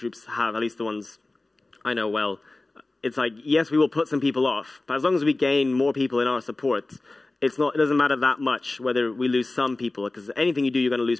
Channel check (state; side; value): quieter; right; 3.0 dB